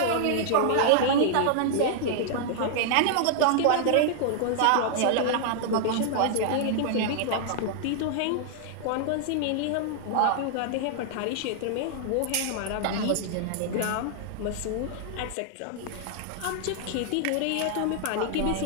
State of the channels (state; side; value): different; both; correlation -0.01